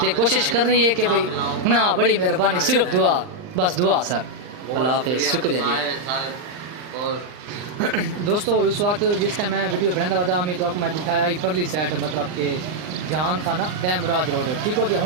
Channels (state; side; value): late; left; 39 ms